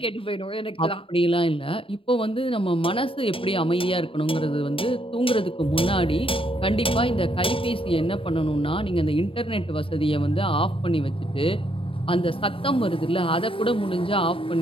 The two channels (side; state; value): right; late; 0.26 ms